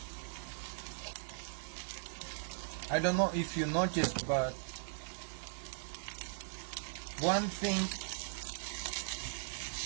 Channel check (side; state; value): left; silent; digital silence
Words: I don't know if you noticed, but one thing